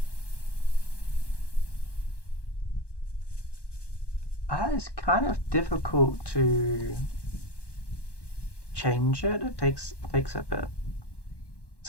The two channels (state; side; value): late; right; 1.1 ms